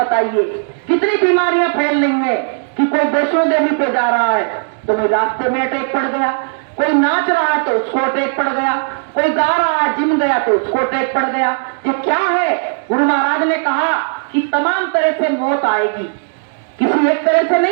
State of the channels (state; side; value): silent; left; digital silence